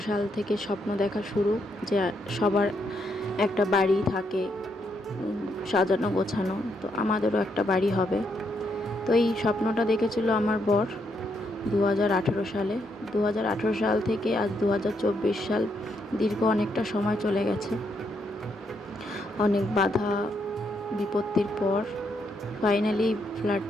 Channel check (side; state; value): both; normal; correlation 0.77